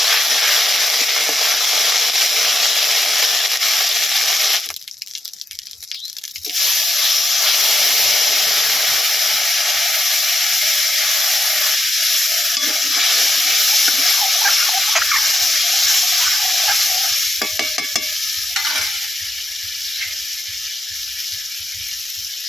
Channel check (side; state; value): both; normal; correlation 0.84